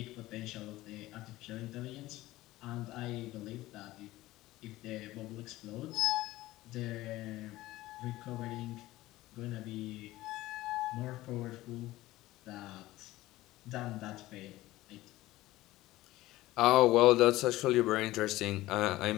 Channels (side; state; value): right; quieter; 17.2 dB